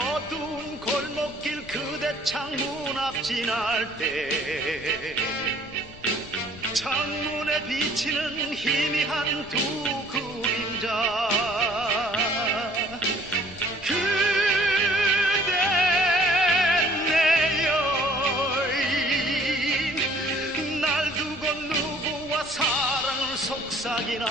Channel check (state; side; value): noise; left; rumble, 19 dB below the sound